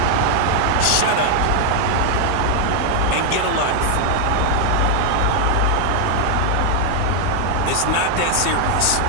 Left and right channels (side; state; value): both; different; correlation 0.00